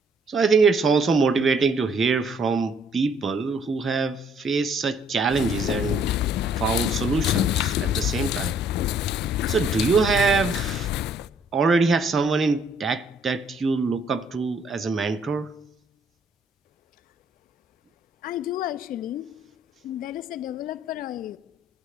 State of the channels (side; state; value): both; normal; correlation 0.64